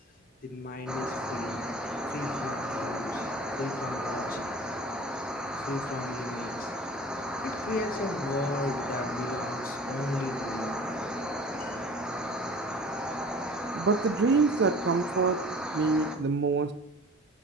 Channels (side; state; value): both; normal; correlation 0.43